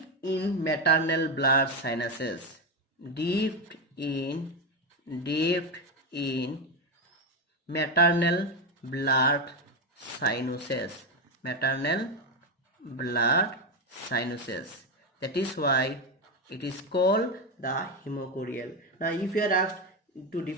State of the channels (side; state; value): both; normal; correlation 0.11